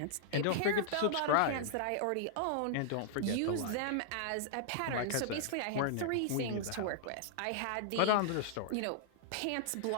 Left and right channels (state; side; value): different; both; correlation -0.01